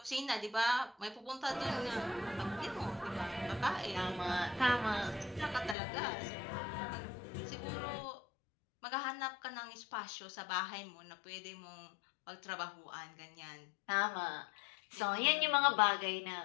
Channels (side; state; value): right; drops out; at 5.8 s